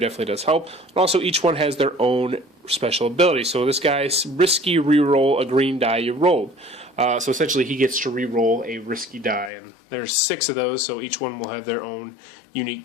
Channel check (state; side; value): drops out; right; at 9.5 s